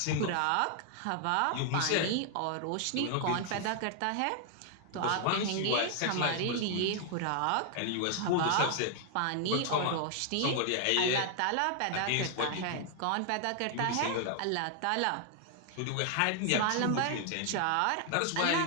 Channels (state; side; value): different; both; correlation 0.00